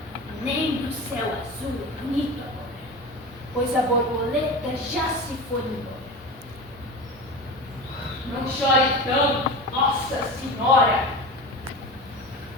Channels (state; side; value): normal; both; correlation 0.29